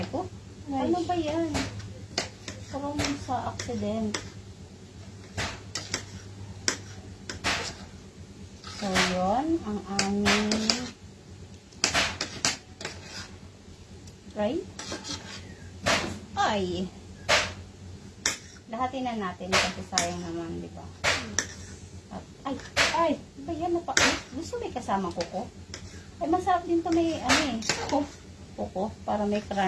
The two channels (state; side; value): identical; both; correlation 1.00